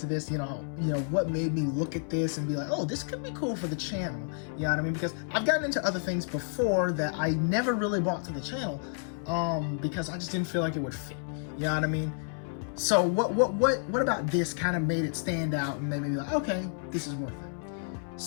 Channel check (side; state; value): right; silent; 58 dB below the other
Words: this. You know what made me look at this and be like, oh, this could be cool for the channel. You know what I mean? Because I've gotten into other things before that I never really brought to the channel, because I just didn't feel like it would fit. You know what I mean? So what about this kind of made it stand out and made me be like, okay, this is worth it.